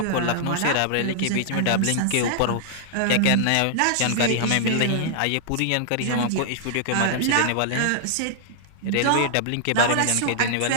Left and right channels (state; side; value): different; both; correlation -0.01